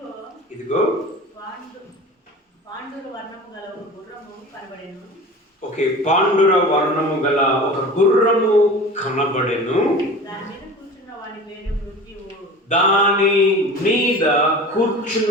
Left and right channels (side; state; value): both; normal; correlation 0.37